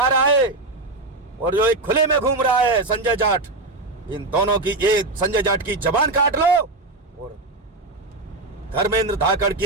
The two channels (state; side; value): quieter; left; 3.1 dB